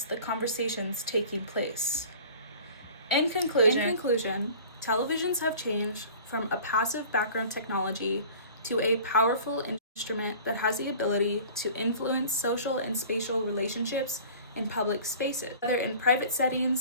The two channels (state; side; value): inverted; both; correlation -0.44